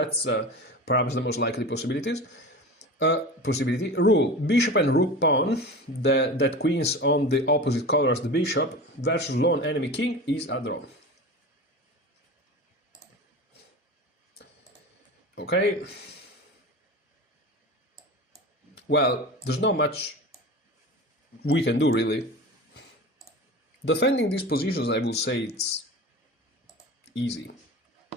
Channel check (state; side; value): normal; both; correlation 0.31